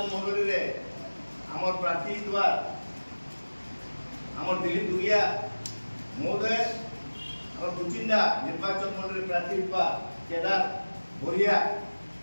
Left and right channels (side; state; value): both; inverted; correlation -1.00